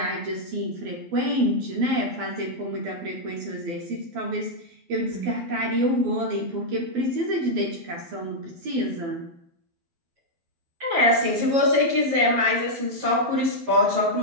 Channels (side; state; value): left; late; 12 ms